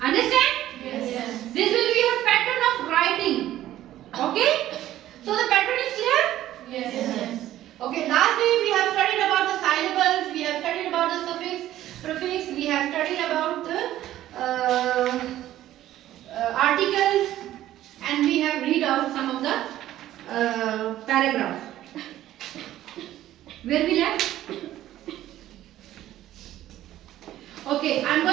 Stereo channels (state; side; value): quieter; left; 13.5 dB